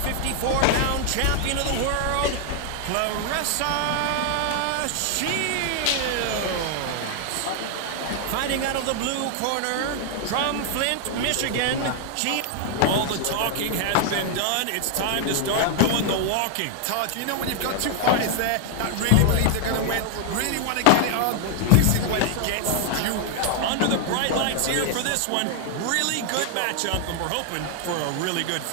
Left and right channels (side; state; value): both; different; correlation 0.00